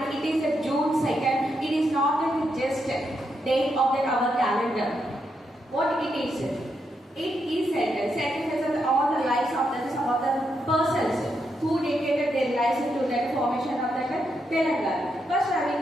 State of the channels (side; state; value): both; normal; correlation 0.81